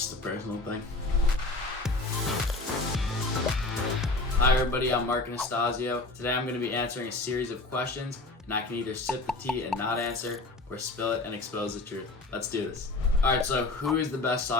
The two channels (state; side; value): quieter; right; 3.1 dB